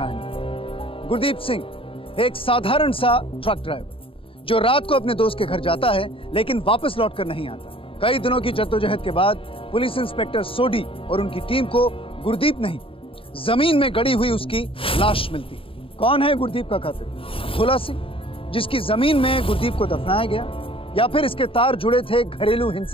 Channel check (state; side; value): late; right; 0.26 ms